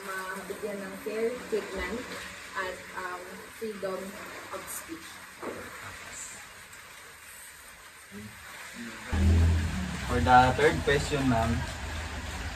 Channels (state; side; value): identical; both; correlation 1.00